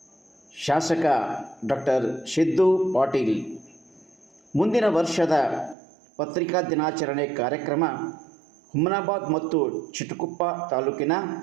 ಶಾಸಕ ಡಾಕ್ಟರ್ ಸಿದ್ದು ಪಾಟೀಲ್. ಮುಂದಿನ ವರ್ಷದ ಪತ್ರಿಕಾ ದಿನಾಚರಣೆ ಕಾರ್ಯಕ್ರಮ ಹುಮನಾಬಾದ್ ಮತ್ತು ಚಿಟಗುಪ್ಪ ತಾಲೂಕಿನ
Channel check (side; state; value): left; drops out; at 5.8 s